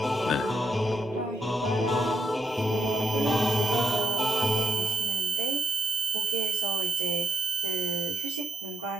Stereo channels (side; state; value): both; normal; correlation 0.77